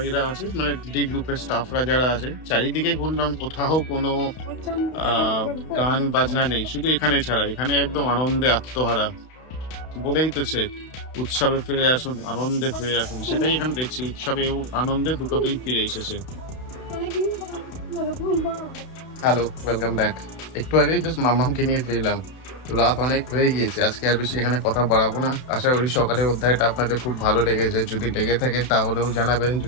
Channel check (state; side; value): late; right; 32 ms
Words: আছে, মানে ডি গ্রুপের স্টাফরা যারা আছে। চারিদিকে ঘুরলাম, কোথাও কোনো গান বাজনা নেই, শুধু এখানে ছাড়া। এখানে একদম আনন্দে আত্মহারা, বলেই তো সে উৎসবে ফিরে আসুন, আনন্দে ফিরে আসুন। সেটাই এখানে দেখছি, উৎসবে আনন্দে দুটোতেই ফিরে এসেছে। Hello, welcome back. একটু আগে জাস্ট মাম্মামকে নিয়ে ফিরলাম। রাত অনেক হয়ে গিয়েছে, আজকে আর বেশি এখানে কথা বাড়াবো না। আশা করি সকালের অধ্যায়টা আপনাদের খুব ভালো লেগেছে। যদি লেগে থাকে তাহলেও জানাবেন,